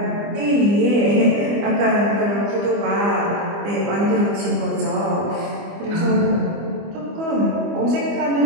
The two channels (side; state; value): left; late; 25 ms